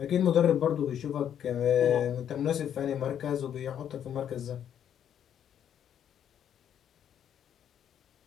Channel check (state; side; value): quieter; right; 9.5 dB